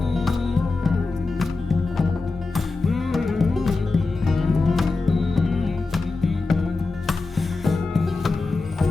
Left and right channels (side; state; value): right; quieter; 3.6 dB